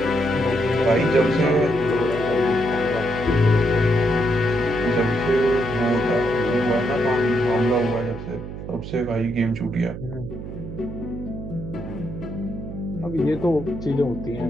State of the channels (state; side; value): noise; right; hum, 9 dB below the sound